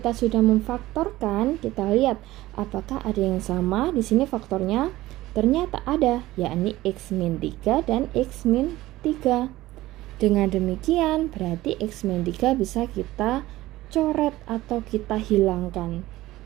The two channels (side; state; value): left; quieter; 16.9 dB